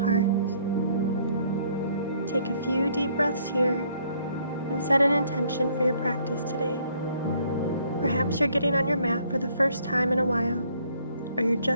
Take a few deep breaths here and set an intention for your practice today. Perhaps you're getting on your mat for the first time in a while, or you're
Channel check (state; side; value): inverted; both; correlation -0.64